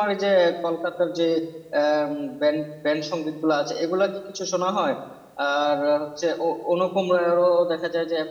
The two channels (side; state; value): both; identical; correlation 1.00